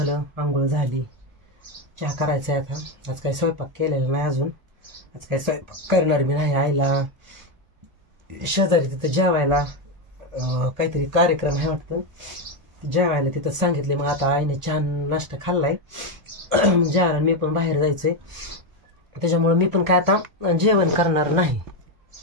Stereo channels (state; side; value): late; left; 1.4 ms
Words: आंघोळ झाली, चहा करायचा आहे. आता आज काही स्वयंपाक केलेला नाही अजून. आज काही स्वयंपाक करणार मी नाही. आईला शेजारी तिथं जेवायला काहीतरी कार्यक्रम आहे वाटतं, जेवायला तिथं सांगितले. मग आता आईने छान नाश्ता खाल्लाय, जेवायला मी पण बाहेर जायचंय. त्याच्यामुळे मी पण काय आता जेवण करणार नाही,